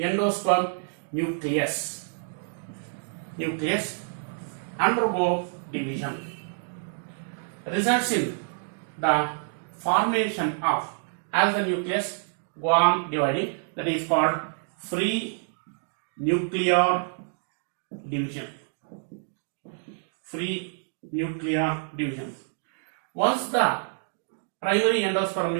nucleus undergo division, results in the formation of, as the nucleus go on dividing, that is called free nuclear division. Free nuclear division. Once the primary endosperm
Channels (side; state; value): left; silent; digital silence